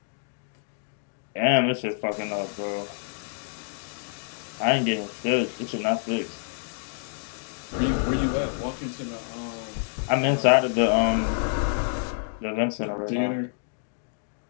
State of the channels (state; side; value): silent; right; digital silence